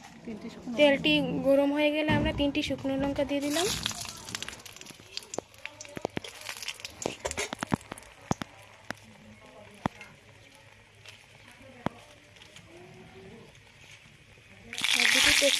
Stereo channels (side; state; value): both; identical; correlation 1.00